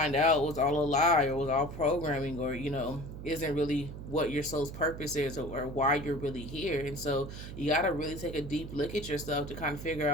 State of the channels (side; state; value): right; noise; hum, 10 dB below the sound